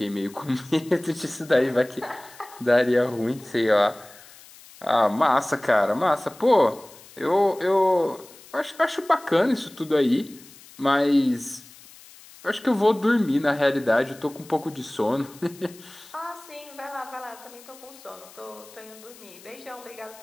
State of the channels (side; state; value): left; noise; hiss, 22 dB below the sound